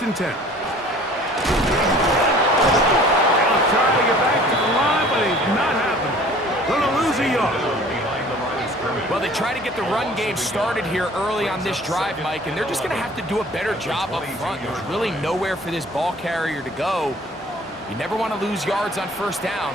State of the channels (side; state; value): both; normal; correlation 0.50